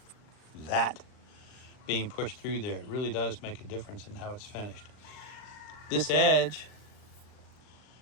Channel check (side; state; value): right; late; 39 ms